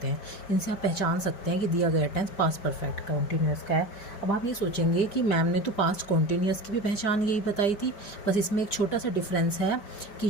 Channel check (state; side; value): late; right; 5.0 ms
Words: हैं। इनसे आप पहचान सकते हैं कि दिया गया टेंस पास्ट परफेक्ट कॉन्टिन्यूस का है। अब आप ये सोचेंगे कि मैम ने तो पास्ट कॉन्टिन्यूस की भी पहचान यही बताई थी, बस इसमें एक छोटा सा डिफरेंस है कि